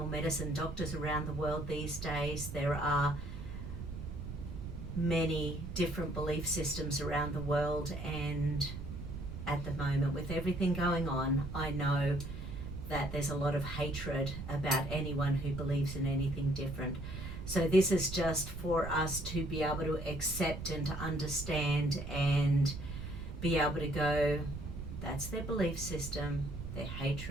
medicine doctors around the world these days. There are many different belief systems around the world, and at the moment, with everything going on, I know that there's a lot of hatred about anyone who believes in anything different. So this is just for us to be able to accept and to understand and be able to go, that's their belief system, their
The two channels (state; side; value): noise; right; rumble, 8 dB below the sound